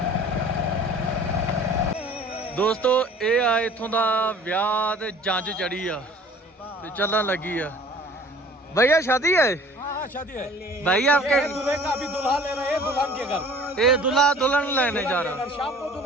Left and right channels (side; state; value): both; normal; correlation 0.49